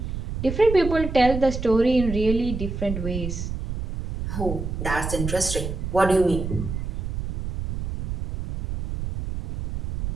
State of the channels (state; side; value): noise; right; rumble, 5 dB below the sound